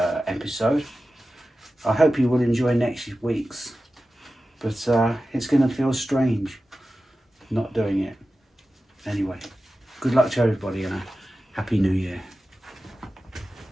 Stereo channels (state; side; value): normal; both; correlation 0.94